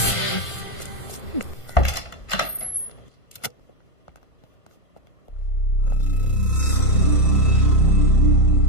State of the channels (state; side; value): late; right; 1.5 ms